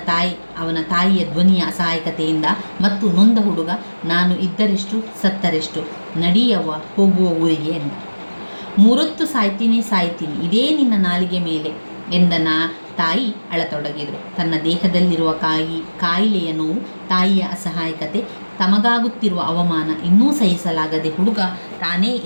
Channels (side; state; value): both; inverted; correlation -1.00